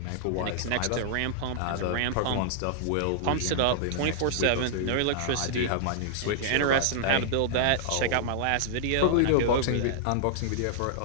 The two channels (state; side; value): different; both; correlation -0.01